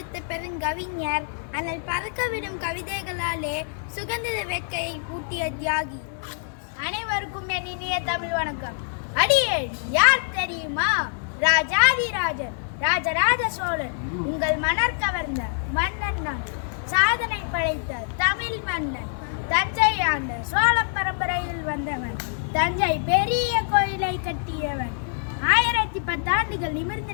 பெருங்கவிஞர், அனல் பறக்கவிடும் கவிதைகளாலே சுதந்திர வேட்கையை ஊட்டிய தியாகி. அனைவருக்கும் என் இனிய தமிழ் வணக்கம். அடியேன் யார் தெரியுமா? ராஜாதிராஜன், ராஜராஜ சோழன், உங்கள் மணர் கவர்ந்த மன்னன் நான். சாதனை படைத்த தமிழ் மன்னன், தஞ்சை ஆண்ட சோழ பரம்பரையில் வந்தவன், தஞ்சை பெரிய கோயிலை கட்டியவன். 1010 ஆண்டுகள் நிமிர்ந்து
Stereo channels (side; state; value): right; silent; digital silence